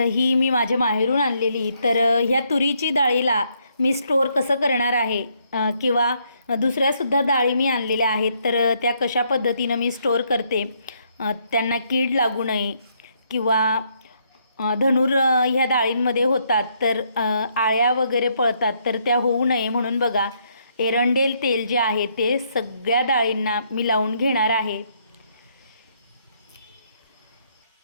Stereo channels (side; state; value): both; inverted; correlation -0.72